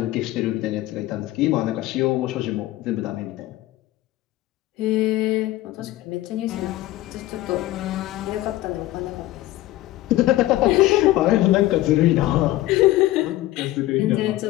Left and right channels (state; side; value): quieter; right; 16.3 dB